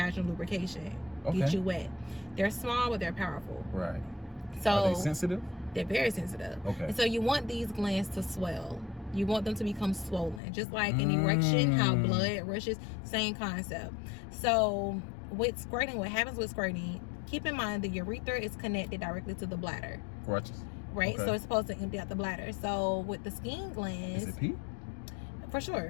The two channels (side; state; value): right; drops out; at 10.4 s